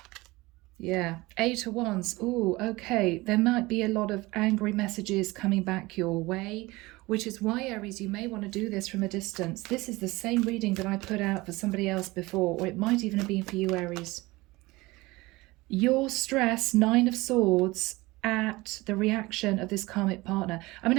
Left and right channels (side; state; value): left; quieter; 21.2 dB